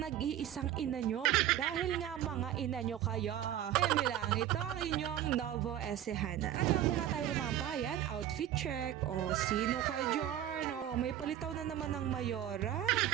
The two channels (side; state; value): left; quieter; 11.6 dB